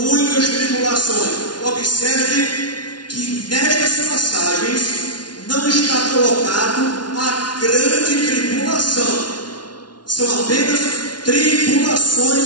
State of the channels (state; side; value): late; right; 0.70 ms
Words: tribulações. Observe que nestas passagens não está colocado a grande tribulação. São apenas tribulações